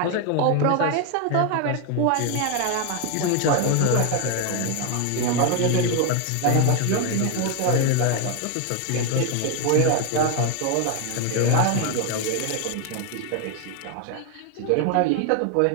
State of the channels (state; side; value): different; both; correlation 0.01